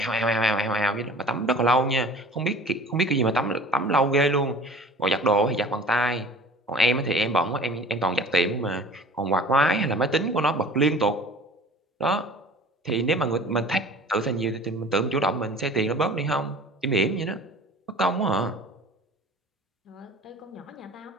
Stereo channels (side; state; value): both; normal; correlation 0.44